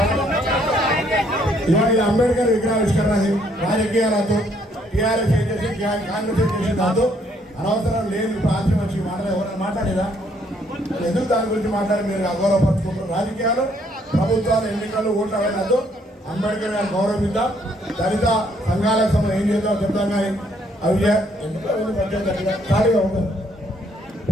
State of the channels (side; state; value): both; normal; correlation 0.68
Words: ఇవాళ అంబేద్కర్ విగ్రహావిష్కరణ రాజకీయాలతో టీఆర్ఎస్ చేసి కాంగ్రెస్ చేసి దాంతో అనవసరం లేని ప్రాంతం వచ్చి ఎవరైనా మాట్లాడేదా? ఎందుకు దాని గురించి మాట్లాడి మీరు అగౌరవపరుచుకుంటారు? రాజకీయాలు, ప్రభుత్వాలు, ఎన్నికలు, ఓట్లు అవైనతో అంబేద్కర్ గారు గౌరవిద్దాం. దళిత సంఘాల సమయం ఏం చేద్దాం చెప్తాం. కానీ అవి ఎందుకు ఖాళీగా ఉండదు.